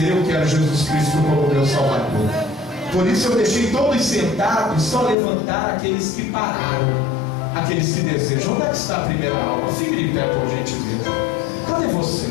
eu quero Jesus Cristo como meu Salvador. Por isso eu deixei todos sentados, só levantar aqueles que pararam, aqueles que desejam. Onde é que está a primeira alma? Fique de pé, por gentileza. Cadê você?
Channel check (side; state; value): right; drops out; at 5.2 s